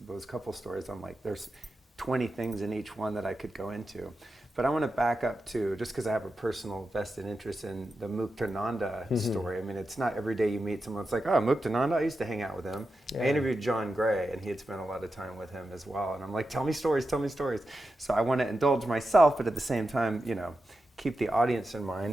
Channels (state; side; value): normal; both; correlation 0.90